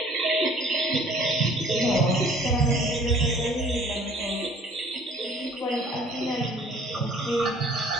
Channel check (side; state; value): both; normal; correlation 0.53